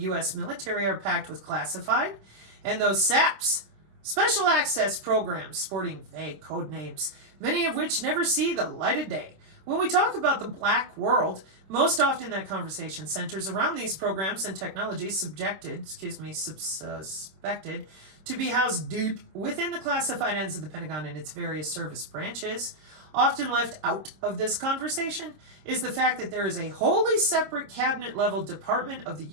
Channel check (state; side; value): late; left; 26 ms